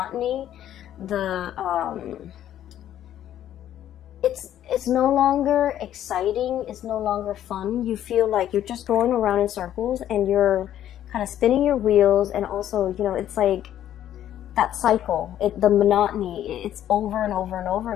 it's no longer exciting, it's no longer fun. You feel like you're just going around in circles and you're kind of spinning your wheels, and also, you know, it's like that cycle, the monotony, it's over and over and over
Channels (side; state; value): right; quieter; 11.5 dB